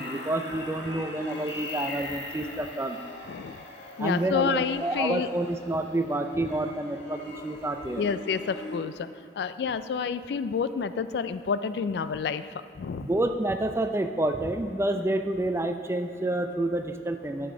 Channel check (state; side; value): normal; both; correlation 0.49